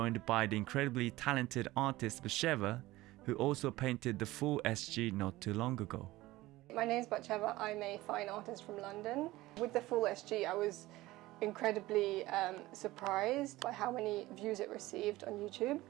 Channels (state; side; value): quieter; left; 18.1 dB